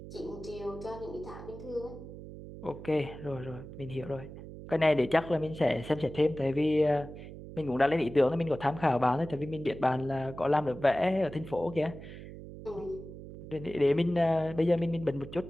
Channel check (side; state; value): right; noise; hum, 13 dB below the sound